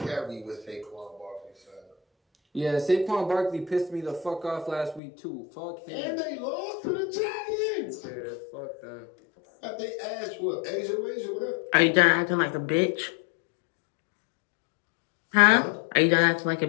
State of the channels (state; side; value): drops out; right; at 5.0 s